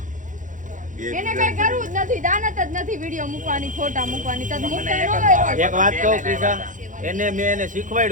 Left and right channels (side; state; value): left; late; 0.37 ms